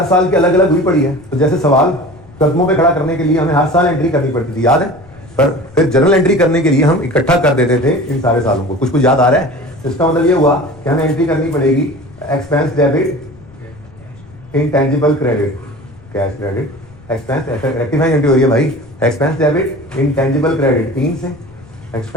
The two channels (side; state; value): left; noise; rumble, 23 dB below the sound